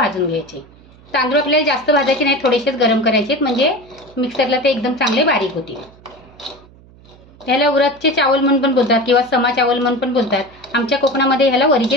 घ्यायचे। तांदूळ आपल्याला जास्त भाजायचे नाही, थोडेसेच गरम करायचे म्हणजे मिक्सरला ते एकदम चांगले बारीक होतील। त्याला उरदचे चावल म्हणून पण बोलतात किंवा समा चावल म्हणून पण बोलतात। आमच्या कोकणामध्ये ह्याला वरीचे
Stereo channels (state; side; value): noise; right; hum, 25 dB below the sound